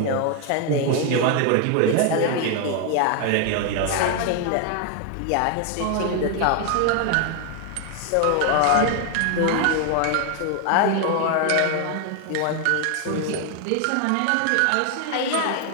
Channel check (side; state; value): both; different; correlation 0.01